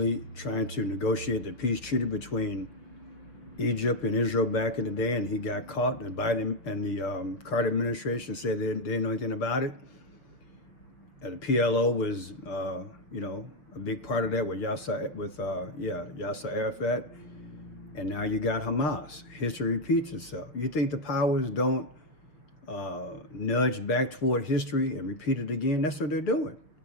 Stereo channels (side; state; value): right; late; 6.4 ms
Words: trying to negotiate the peace treaty between Egypt and Israel back in the day, and he got caught. And Biden and the Carter administration said they didn't know anything about it. And the PLO was, a big part of that with Yasser Arafat. And now you got Hamas. History repeats itself. You think the powers don't nudge back toward history and repeat it again? That's what they're doing.